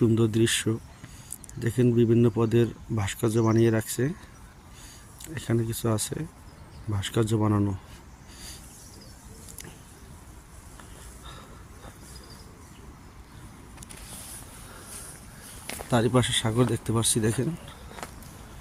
দৃশ্য দেখেন। বিভিন্ন পদের ভাস্কর্য বানিয়ে রাখছে। এখানে কিছু আছে ভাস্কর্য বানানো। তারই পাশে সাগর দেখতে পাচ্ছি, দেখেন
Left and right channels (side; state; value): both; identical; correlation 1.00